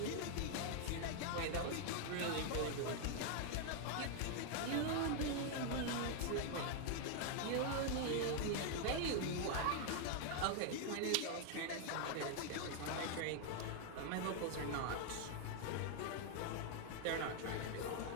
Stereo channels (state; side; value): different; both; correlation 0.00